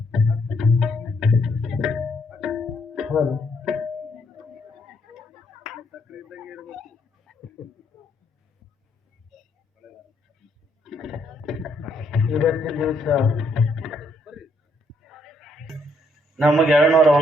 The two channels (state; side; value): normal; both; correlation 0.72